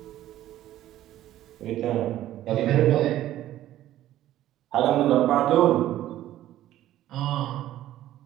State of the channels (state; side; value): quieter; left; 13.4 dB